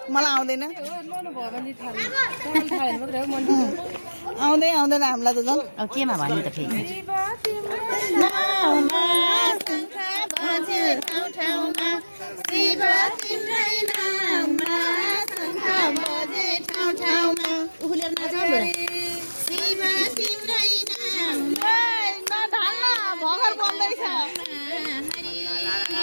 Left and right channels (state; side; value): inverted; both; correlation -1.00